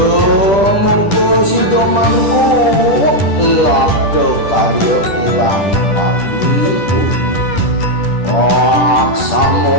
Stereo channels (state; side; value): late; right; 10 ms